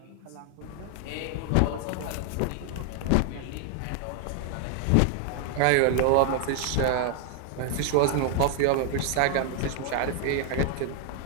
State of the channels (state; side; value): different; both; correlation 0.00